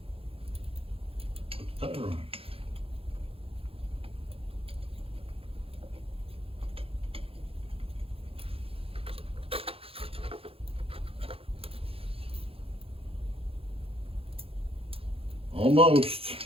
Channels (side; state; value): left; late; 0.27 ms